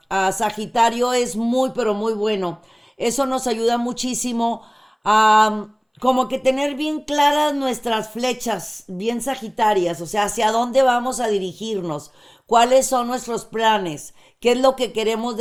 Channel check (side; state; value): both; identical; correlation 1.00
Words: Sagitario es muy, pero muy bueno. Eso nos ayuda muchísimo a como que tener bien claras nuestras flechas, bien sagitarias, o sea, hacia dónde vamos a dirigirnos, cuáles son nuestros planes, qué es lo que queremos